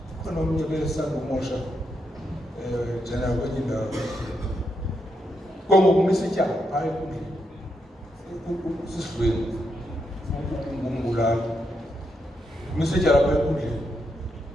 khona omnye besandumosha njena kwenye indawo kongokumisa ityala phaa enkundleni sisidlweni ngumbulali umisa ityala phaa enkundleni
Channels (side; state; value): both; normal; correlation 0.81